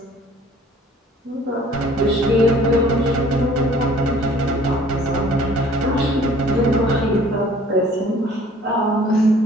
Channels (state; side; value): normal; both; correlation 0.53